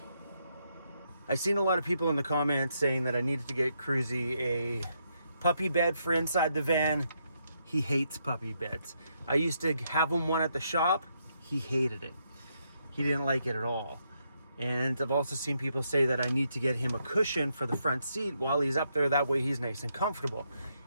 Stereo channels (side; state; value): both; inverted; correlation -0.78